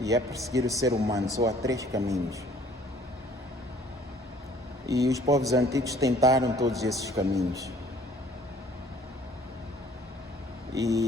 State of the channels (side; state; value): both; normal; correlation 0.56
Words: é perseguir o ser humano. Só há 3 caminhos. E os povos antigos tentaram todos esses caminhos.